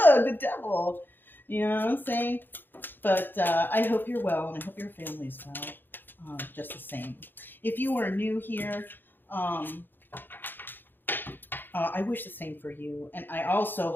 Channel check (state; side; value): late; right; 0.095 ms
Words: the devil. You know what I'm saying? But I hope you're well, and I hope your family's well, just the same. If you are new here, I wish the same for you. And I also